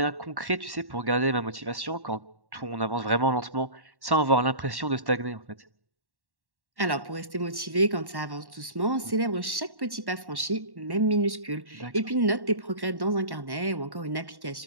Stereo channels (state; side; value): late; left; 1.1 ms